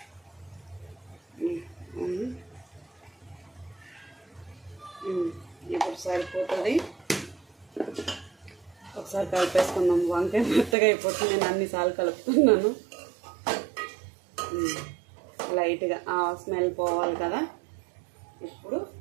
ఇప్పుడు సరిపోతుంది. ఒకసారి కలిపేసుకుందాం. వంకాయ మెత్తగా అయిపోతుంది, నేను అన్నిసార్లు కలుపుతున్నాను. లైట్గా ఆ స్మెల్ పోవాలి కదా. ఇప్పుడు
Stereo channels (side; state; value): left; drops out; at 10.8 s